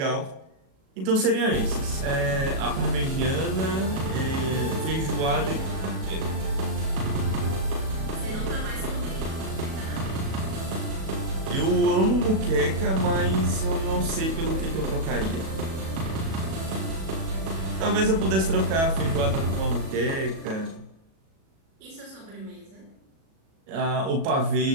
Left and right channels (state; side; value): late; left; 37 ms